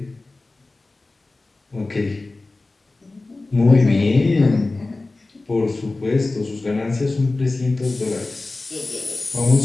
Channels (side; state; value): right; quieter; 3.2 dB